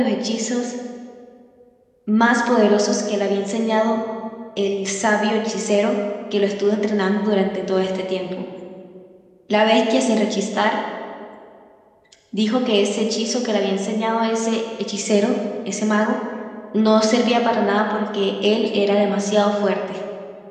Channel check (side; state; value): both; identical; correlation 1.00